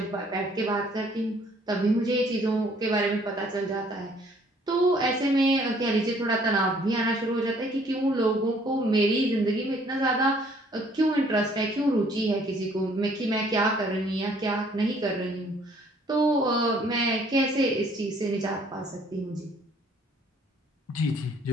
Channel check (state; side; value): normal; both; correlation 0.60